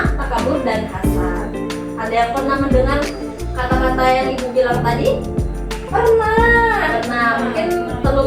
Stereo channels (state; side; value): identical; both; correlation 1.00